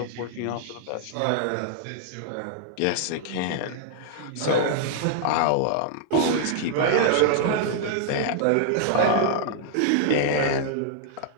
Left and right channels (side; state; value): both; different; correlation -0.01